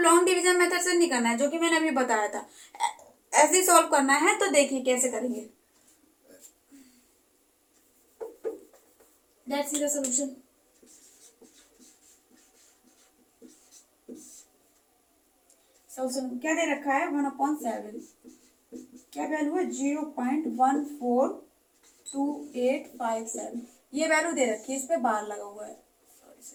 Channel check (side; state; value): both; identical; correlation 1.00